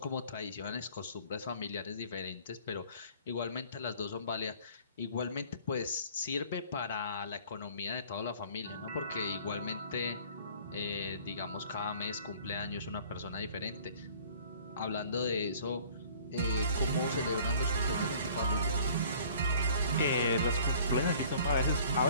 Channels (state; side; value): inverted; both; correlation -0.52